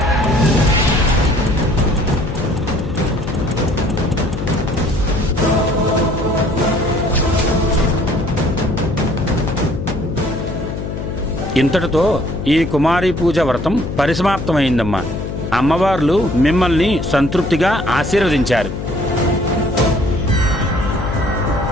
ఇంతటితో ఈ కుమారి పూజ వ్రతం పరిసమాప్తమైందమ్మా. అమ్మవార్లు మిమ్మల్ని సంతృప్తిగా ఆశీర్వదించారు.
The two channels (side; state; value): left; noise; hum, 6 dB below the sound